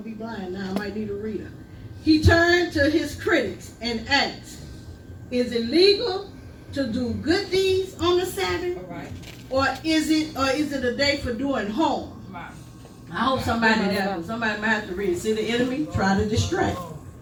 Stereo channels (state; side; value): identical; both; correlation 1.00